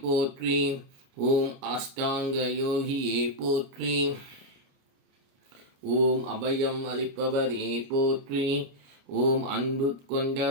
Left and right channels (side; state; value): left; late; 29 ms